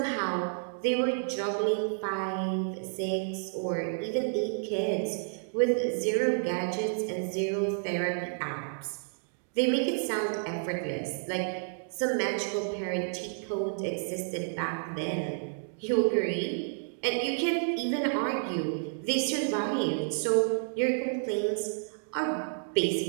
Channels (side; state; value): left; silent; digital silence